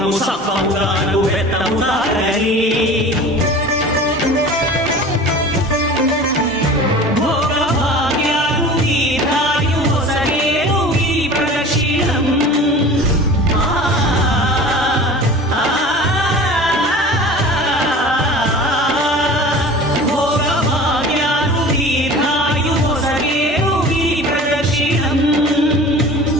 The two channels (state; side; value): normal; both; correlation 0.39